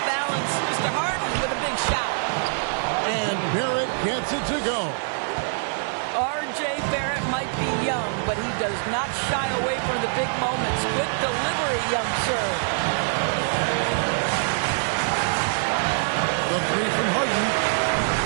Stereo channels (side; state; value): left; silent; 56 dB below the other